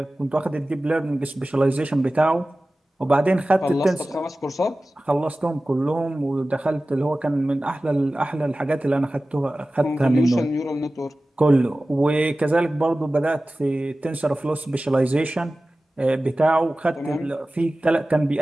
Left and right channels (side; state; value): both; normal; correlation 0.96